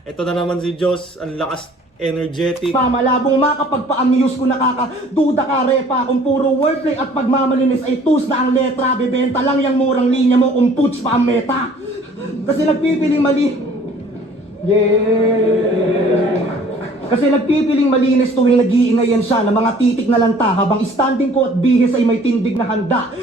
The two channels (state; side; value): normal; both; correlation 0.53